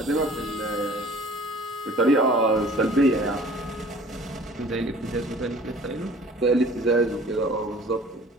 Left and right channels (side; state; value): both; normal; correlation 0.49